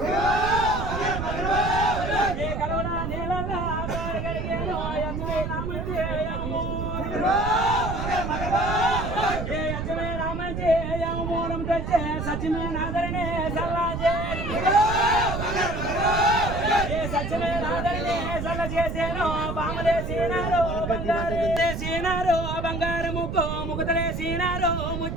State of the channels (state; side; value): noise; right; rumble, 4 dB below the sound